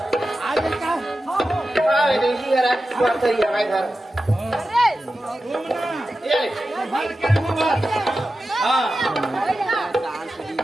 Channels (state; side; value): normal; both; correlation 0.93